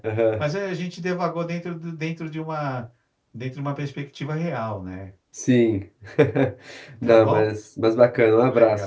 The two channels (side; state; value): both; identical; correlation 1.00